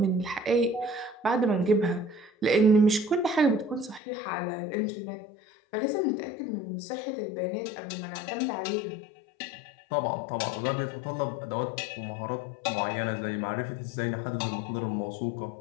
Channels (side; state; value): right; drops out; at 4.0 s